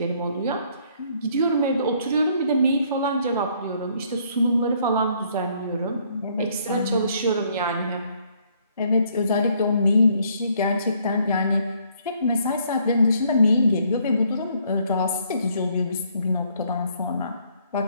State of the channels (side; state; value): both; inverted; correlation -0.66